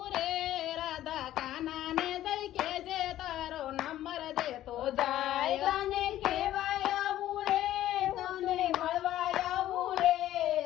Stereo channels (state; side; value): quieter; right; 13.3 dB